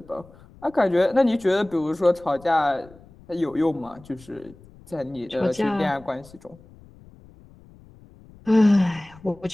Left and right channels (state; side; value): noise; left; rumble, 24 dB below the sound